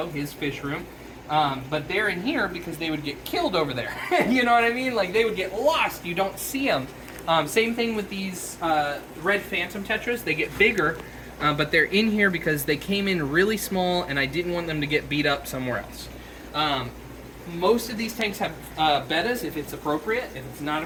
his fish room. But they're in here because they would get killed over there. You know what I mean? Like they would get lost. You don't see them. Same thing with these red phantom tetras. They get bigger, but they're in here because they came in really small and I didn't want them to get beat up somewhere else. Most of these tanks have bettas if it's appropriate. If it's not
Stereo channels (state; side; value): identical; both; correlation 1.00